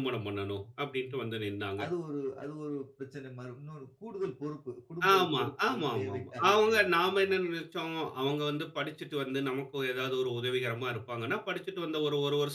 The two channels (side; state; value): both; identical; correlation 1.00